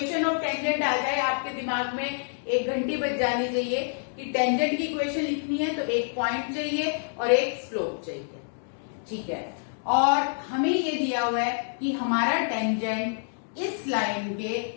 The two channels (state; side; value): silent; right; digital silence